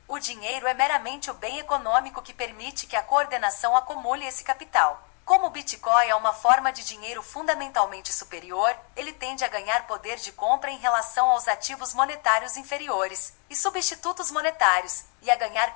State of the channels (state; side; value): quieter; right; 39.7 dB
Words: O dinheiro é meramente o bem econômico que permite que a coordenação acumule esse capital. Como o Bitcoin é uma forma de dinheiro fundamentalmente superior, ele tende a ganhar poder de compra em relação aos ativos monetários inferiores e substitutos monetários, e a ganhar